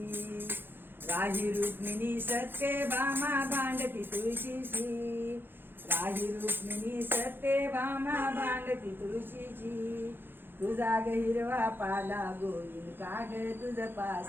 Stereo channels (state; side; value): late; left; 0.10 ms